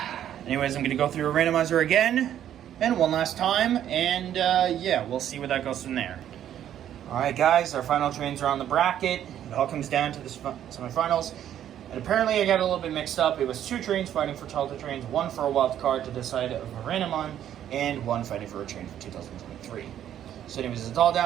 anyways, I'm going to go through a randomizer again, and one last time, and yeah, we'll see where that goes from there. Alright guys, our final trains are on the bracket. It all comes down to the semifinals. And apparently I got a little bit mixed up. It was 2 trains fighting for childhood trains, 1 for a wild card to decide of a random on, and 1 fighting for a train for 2023. So anyways, it's all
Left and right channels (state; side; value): quieter; left; 10.7 dB